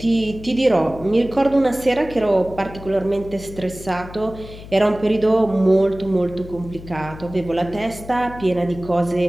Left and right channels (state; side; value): noise; left; hum, 15 dB below the sound